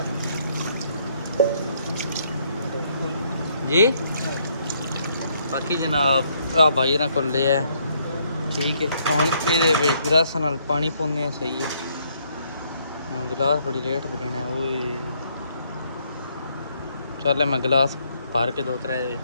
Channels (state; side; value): inverted; both; correlation -0.70